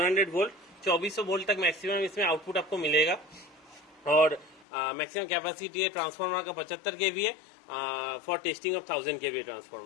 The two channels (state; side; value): drops out; right; at 4.7 s